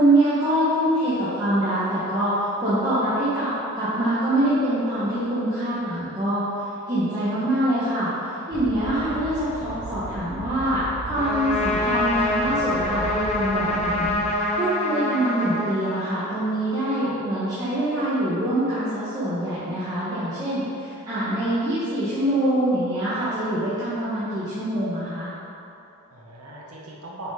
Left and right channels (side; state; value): both; normal; correlation 0.47